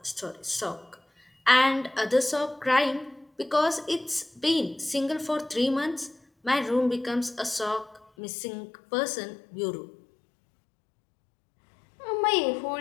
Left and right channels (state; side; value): drops out; right; at 8.1 s